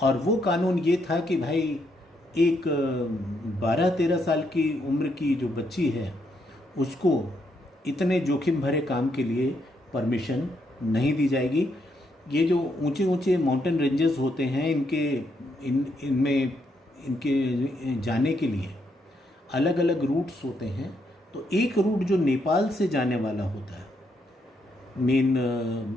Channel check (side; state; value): both; normal; correlation 0.77